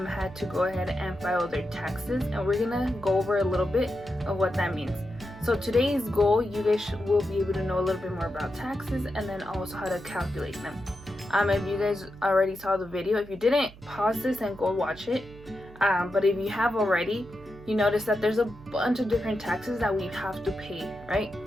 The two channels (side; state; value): right; noise; hum, 20 dB below the sound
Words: to go ahead and file their taxes, and we're gonna go over a little bit of what that means. So today's goal, you guys will be able to know a little bit more about taxes and then also how to calculate them. If you guys already saw the video, if you didn't, pause this and go watch it. But if you have already, you notice that there's a bunch of different taxes that we have to pay, right?